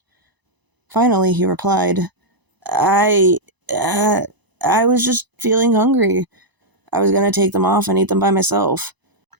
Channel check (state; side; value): late; left; 1.0 ms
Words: Finally, he replied, I was just feeling hungry. I was going to take them off and eat them by myself.